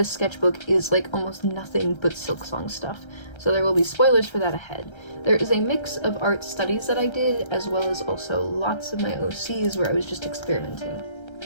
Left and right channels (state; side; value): late; right; 1.3 ms